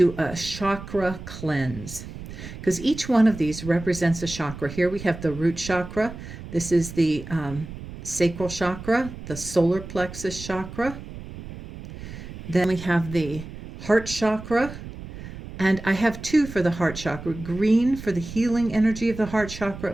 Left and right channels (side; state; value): right; noise; rumble, 12 dB below the sound